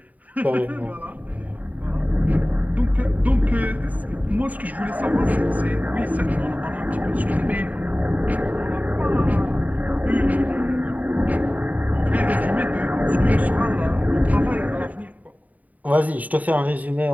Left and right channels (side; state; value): left; late; 0.074 ms